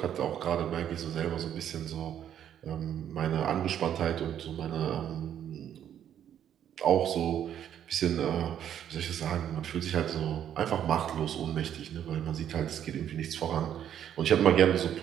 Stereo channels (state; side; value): quieter; left; 9.9 dB